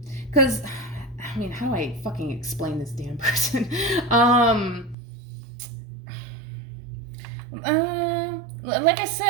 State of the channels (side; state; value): left; drops out; at 5.0 s